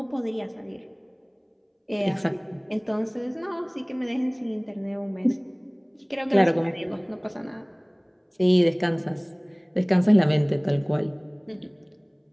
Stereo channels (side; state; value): both; identical; correlation 1.00